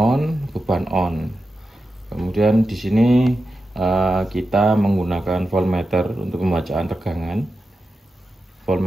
beban on. Kemudian di sini kita menggunakan voltmeter untuk pembacaan tegangan.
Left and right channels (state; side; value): normal; both; correlation 0.91